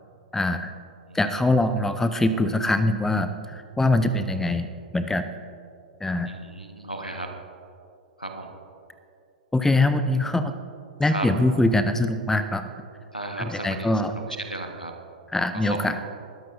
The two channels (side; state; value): both; normal; correlation 0.71